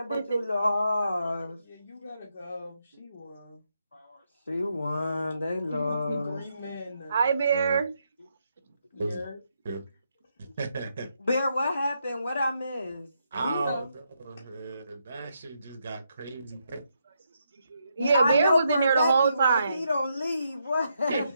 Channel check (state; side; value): inverted; both; correlation -0.80